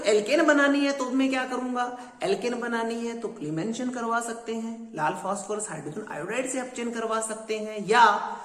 एल्केन बनानी है तो मैं क्या करूंगा, एल्केन बनानी है तो क्लीमेंशन करवा सकते हैं, लाल फास्फोरस हाइड्रोजन आयोडाइड से अपचयन करवा सकते हैं, या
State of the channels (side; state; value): both; identical; correlation 1.00